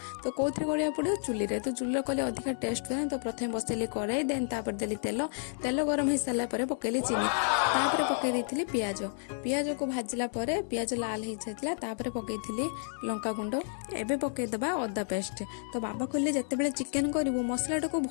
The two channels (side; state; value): right; silent; digital silence